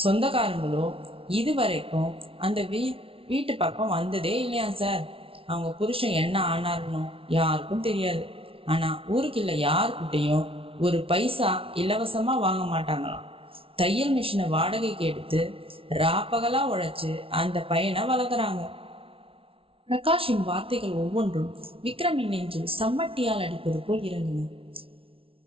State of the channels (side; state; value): left; late; 0.26 ms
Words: சொந்தக்காரங்களோ இதுவரைக்கும் அந்த வீட்டு பக்கம் வந்ததே இல்லையா சார். அவங்க புருஷன் என்ன ஆனார்னோ யாருக்கும் தெரியாது. ஆனா ஊருக்குள்ள யாருக்கிட்டையும் ஒரு பைசா இலவசமா வாங்க மாட்டாங்களாம். தையல் மிஷினை வாடகைக்கு எடுத்து ராப்பகலா உழைச்சு அந்த பையனை வளர்க்குறாங்க. பிரகாஷின் வார்த்தைகள் ஒவ்வொன்றும் விக்ரமின் நெஞ்சில் சம்மட்டியால் அடிப்பது போல் இறங்கின.